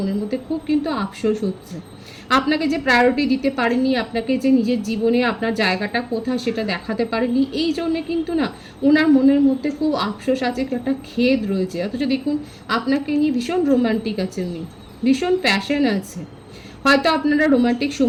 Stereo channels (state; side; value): identical; both; correlation 1.00